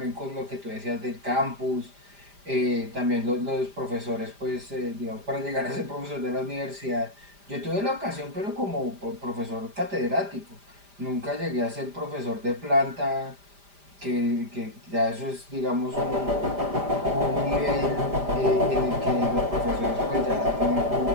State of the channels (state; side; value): late; left; 5.0 ms